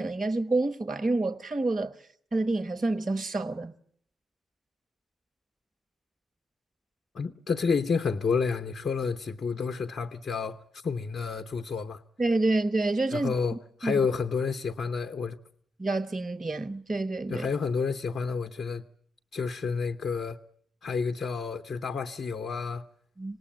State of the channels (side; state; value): both; normal; correlation 0.83